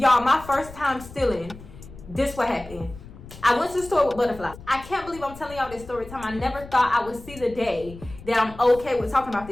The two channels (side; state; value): left; noise; rumble, 17 dB below the sound